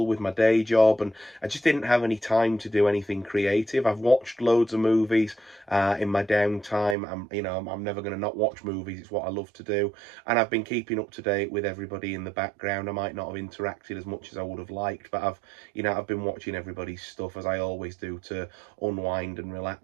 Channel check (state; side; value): drops out; left; at 7.0 s